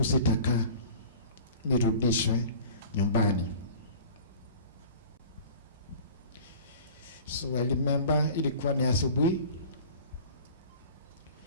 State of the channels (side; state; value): both; inverted; correlation -0.43